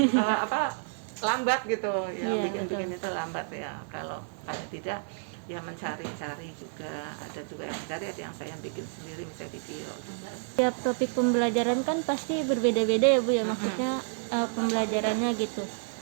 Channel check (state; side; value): silent; left; digital silence